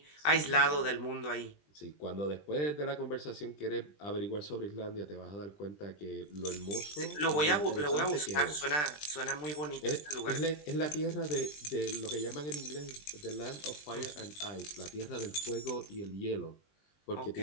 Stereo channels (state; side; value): late; right; 20 ms